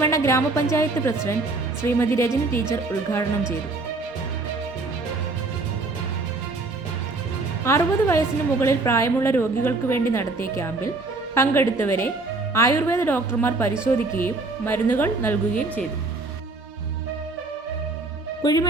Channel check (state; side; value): quieter; left; 3.4 dB